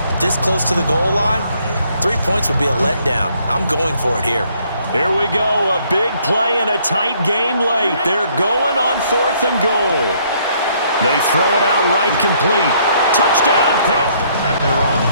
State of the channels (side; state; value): both; inverted; correlation -0.66